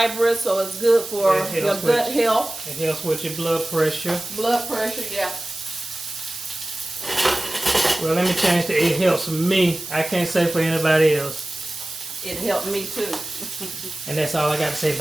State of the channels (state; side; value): noise; right; hiss, 11 dB below the sound